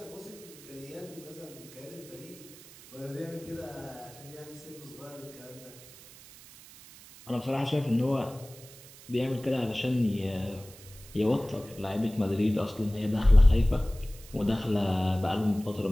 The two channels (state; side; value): noise; right; hiss, 19 dB below the sound